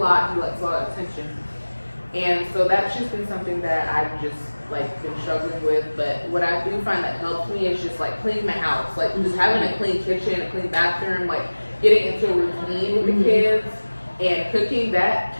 he likes a lot of attention, and so that's just been something that I've just like been struggling with. But what I do find that helps me is just like cleaning my house, like just having a clean kitchen, a clean bathroom, like getting into a routine with the kids and cooking. That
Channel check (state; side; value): inverted; both; correlation -1.00